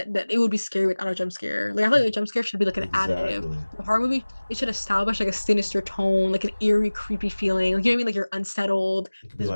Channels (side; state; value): both; inverted; correlation -1.00